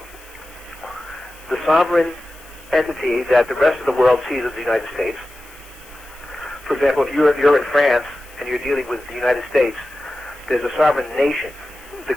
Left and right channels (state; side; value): noise; left; hiss, 23 dB below the sound